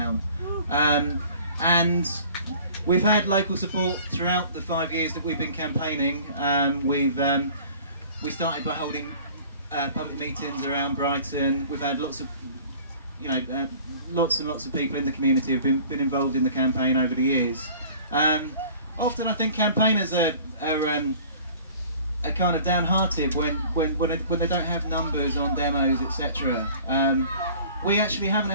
And we've had local support throughout the 5 years that we've been campaigning. We started by holding public meetings around Brighton. We've had lots of, lots and lots of people in the community have been involved in the campaign over the years. Often I think campaigners are kind of downhearted when they don't have numbers on demos, etc. We actually haven't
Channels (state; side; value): inverted; both; correlation -0.47